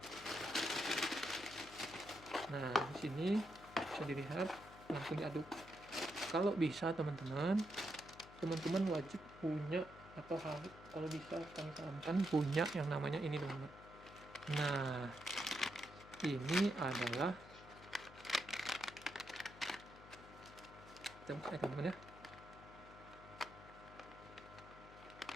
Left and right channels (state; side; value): noise; left; hum, 18 dB below the sound